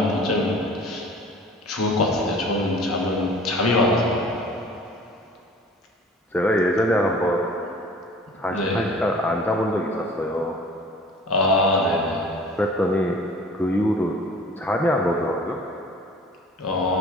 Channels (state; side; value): normal; both; correlation 0.46